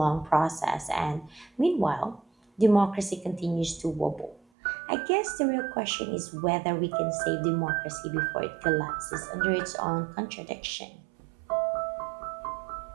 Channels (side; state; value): left; drops out; at 4.4 s